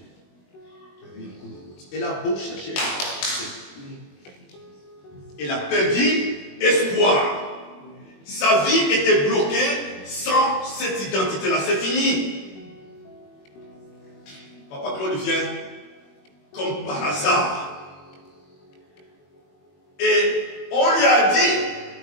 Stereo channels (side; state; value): right; late; 21 ms